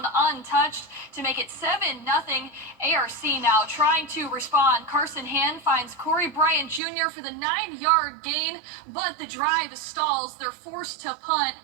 untouched to make it 7-0. ARC now trying to respond. Carson Hand finds Corey Bryant Jr. for the 9-yard gain, but the drive stalls. They're forced to punt,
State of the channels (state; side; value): drops out; left; at 6.8 s